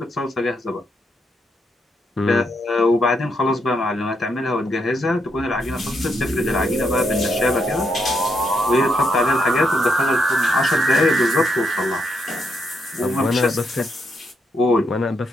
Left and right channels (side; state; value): both; normal; correlation 0.79